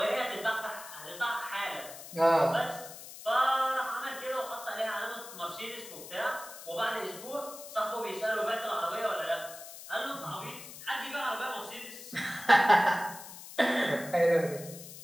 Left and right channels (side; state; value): left; noise; hiss, 14 dB below the sound